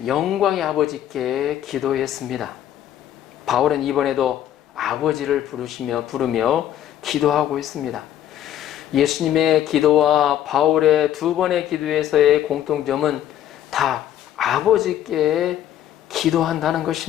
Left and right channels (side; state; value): right; quieter; 11.4 dB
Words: 영광의 아버지께 기도했습니다. 바울은 이번에도 아버지를 부르며 기도하고 있습니다. 예수님의 기도와 바울의 두 번의 기도에서의 공통점은 다 아버지께 기도한다는